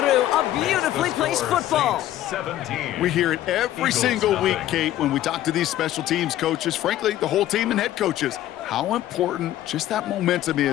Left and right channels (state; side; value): quieter; right; 13.3 dB